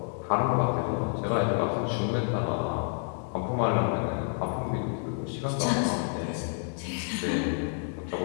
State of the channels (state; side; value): silent; right; 59 dB below the other